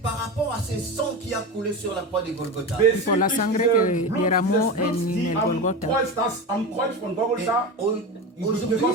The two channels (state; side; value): normal; both; correlation 0.23